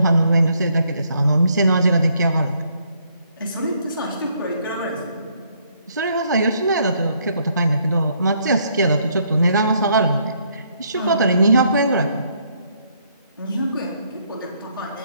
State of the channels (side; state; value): both; inverted; correlation -0.70